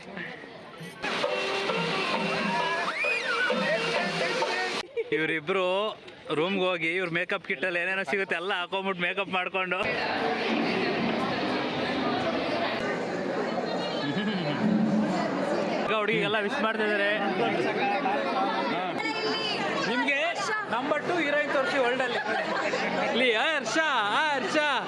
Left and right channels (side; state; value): both; identical; correlation 1.00